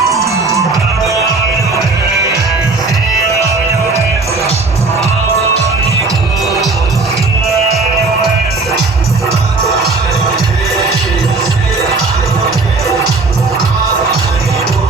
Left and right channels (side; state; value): left; quieter; 3.7 dB